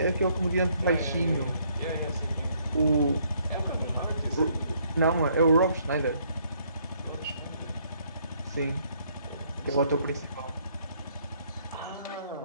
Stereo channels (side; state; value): both; inverted; correlation -0.67